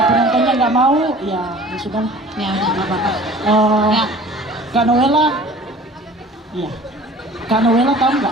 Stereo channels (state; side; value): normal; both; correlation 0.45